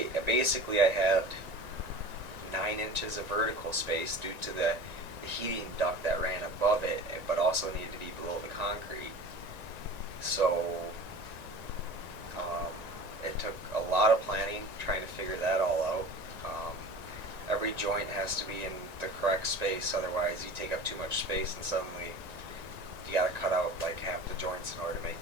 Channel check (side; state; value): left; late; 1.9 ms